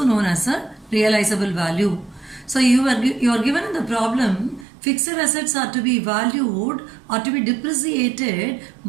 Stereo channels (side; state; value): left; drops out; at 4.7 s